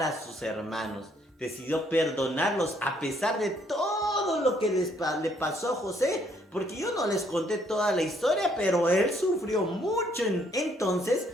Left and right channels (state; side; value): normal; both; correlation 0.67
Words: a sus hermanos, decidió perdonarlos a pesar de todo lo que le pasó a José, porque yo no les conté toda la historia, pero él sufrió mucho. Entonces,